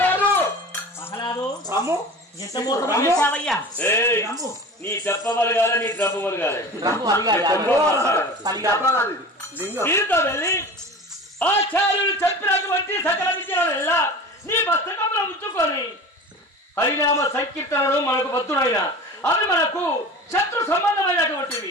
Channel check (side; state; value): both; normal; correlation 0.36